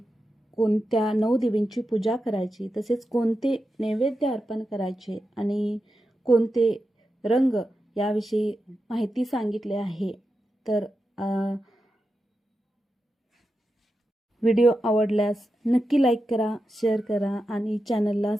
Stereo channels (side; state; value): both; normal; correlation 0.90